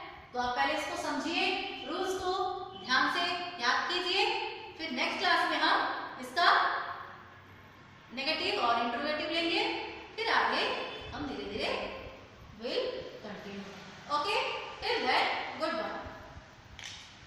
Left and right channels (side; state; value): both; identical; correlation 1.00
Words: तो आप पहले इसको समझिए, रूल्स को ध्यान से याद कीजिए, फिर नेक्स्ट क्लास में हम इसका नेगेटिव और इंट्रोगेटिव